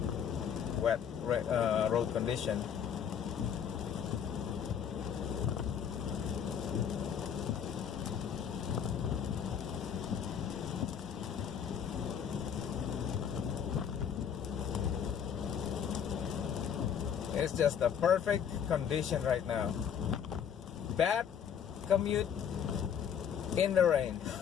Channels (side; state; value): right; quieter; 8.1 dB